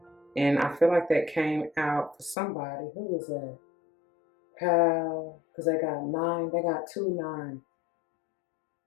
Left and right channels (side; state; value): right; drops out; at 2.4 s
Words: And I feel like that came out for somebody. Who was that? Because they got 9, they got 2 9.